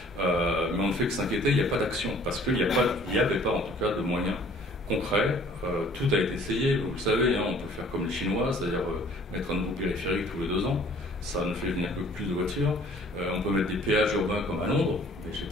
Mais on ne fait que s'inquiéter, il n'y a pas d'action, parce qu'il n'y avait pas en tout cas de moyens concrets. Tout a été essayé, vous le savez, hein, on peut faire comme les Chinois, c'est-à-dire mettre un nouveau périphérique tous les 2 ans, ça ne fait venir que plus de voitures. On peut mettre des péages urbains comme à Londres, mais je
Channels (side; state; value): both; normal; correlation 0.55